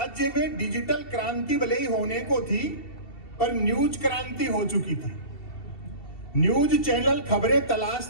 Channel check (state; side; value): late; right; 2.7 ms